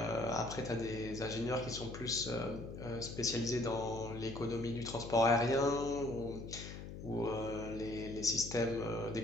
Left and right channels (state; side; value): noise; left; hum, 10 dB below the sound